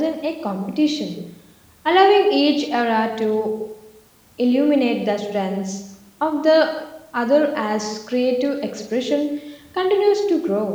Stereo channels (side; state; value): both; identical; correlation 1.00